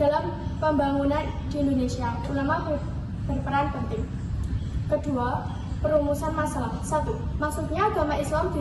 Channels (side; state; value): both; identical; correlation 1.00